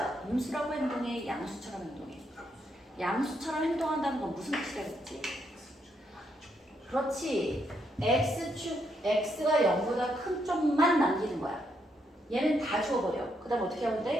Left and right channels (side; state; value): both; normal; correlation 0.77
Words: 음수라고 행동해, 양수처럼 행동해? 양수처럼 행동한다는 건 무슨 뜻이라겠지? 그렇지. X가 0보다 큰 쪽만 남기는 거야. 얘는 다 주워버려. 그 다음 어떻게 하면